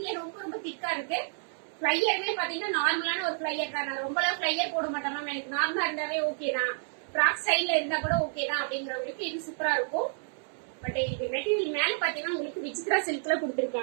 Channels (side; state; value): left; silent; 58 dB below the other